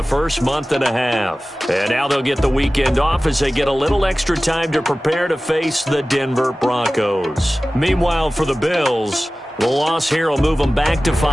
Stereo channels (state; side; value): normal; both; correlation 0.97